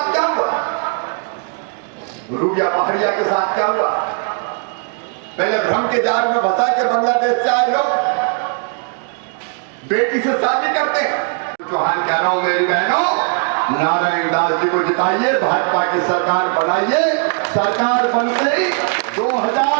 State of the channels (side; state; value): left; quieter; 39.7 dB